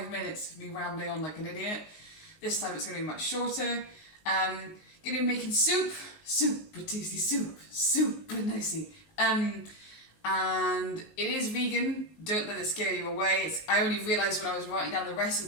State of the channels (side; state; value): right; late; 19 ms